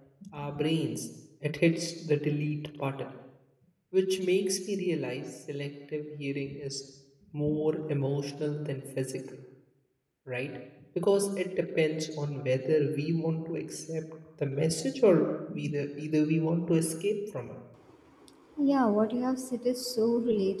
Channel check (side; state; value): both; identical; correlation 1.00